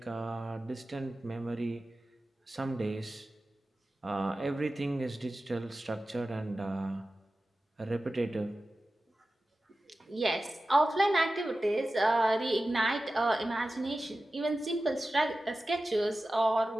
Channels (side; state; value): both; normal; correlation 0.95